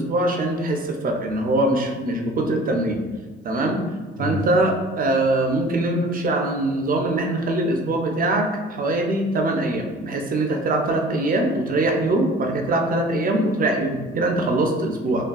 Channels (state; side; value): normal; both; correlation 0.46